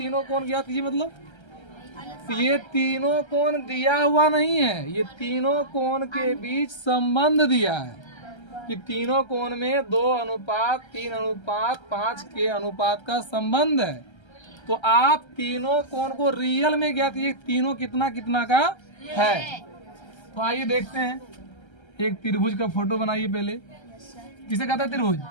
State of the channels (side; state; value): right; late; 1.3 ms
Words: कोण ज्ञात कीजिए मतलब? तो ये तीनों कोण दिया हुआ नहीं है, ये तीनों कोण के बीच संबंध दिया है कि तीनों कोण में 2:3:5 के अनुपात का संबंध है। तो आप तीनों कोण को रियल में ज्ञात कीजिए, तीनों कितना कितना का है। तो आइए देखते हैं, एक त्रिभुज का फोटो बनाइए पहले। किसे कहता है त्रिभुज?